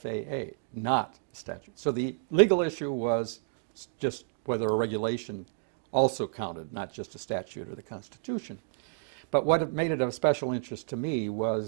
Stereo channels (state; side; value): silent; left; digital silence